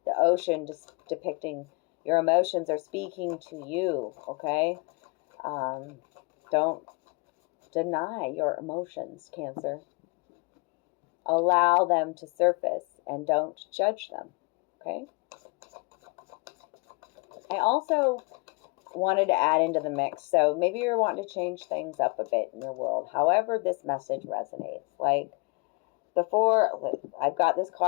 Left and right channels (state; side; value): quieter; right; 29.7 dB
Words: The ocean just depicting your emotions are speaking to you, okay? Don't deny your emotions, Cancer. Allow them to surface and don't judge them, okay? I also wanted to add into the mix, so maybe you're wanting to change things up a bit in your world. However this message resonates. Like before, I've got this